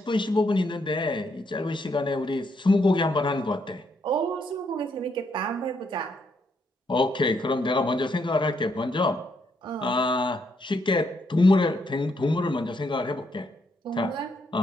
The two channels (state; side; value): normal; both; correlation 0.75